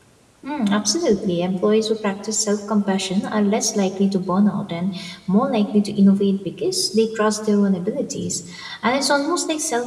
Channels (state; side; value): identical; both; correlation 1.00